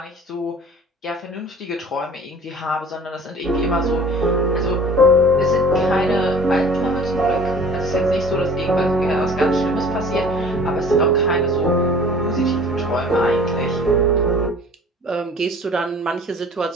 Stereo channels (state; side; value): normal; both; correlation 0.47